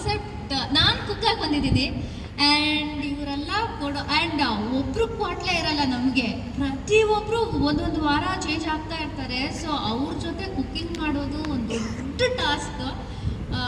ನಾನು ಕುಕ್ಕಾಗಿ ಬಂದಿದ್ದೀನಿ ಆ್ಯಂಡ್ ಇವರೆಲ್ಲ ಕೊಡೋ ಆ್ಯಂಡ್ ಒಬ್ರು ಕ್ವಾಟ್ಲೆ ಇರಲ್ಲ ನಮಗೆ. ಪ್ರತಿಯೊಬ್ಬರು ಒಂದೊಂದು ವಾರ ಚೇಂಜ್ ಆಗ್ತಾ ಇರ್ತಾರೆ. ಸೊ ಅವ್ರ ಜೊತೆ ಕುಕ್ಕಿಂಗ್ ಮಾಡೋದು ಒಂದು ದೊಡ್ಡ ಟಾಸ್ಕ್.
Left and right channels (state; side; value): identical; both; correlation 1.00